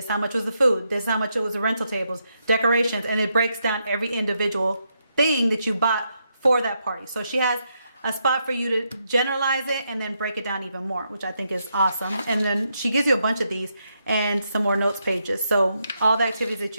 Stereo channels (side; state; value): both; inverted; correlation -0.80